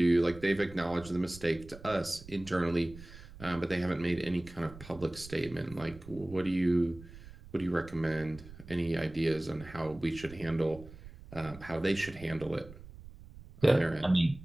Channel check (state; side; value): noise; right; rumble, 17 dB below the sound